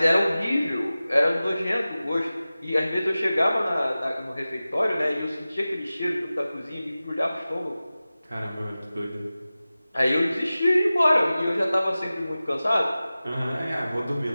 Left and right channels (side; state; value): both; inverted; correlation -0.96